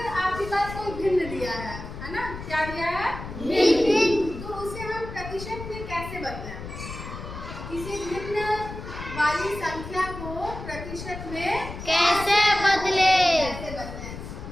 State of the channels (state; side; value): noise; left; rumble, 10 dB below the sound